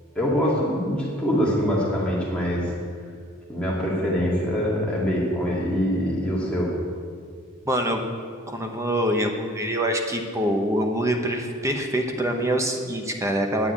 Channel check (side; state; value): both; normal; correlation 0.53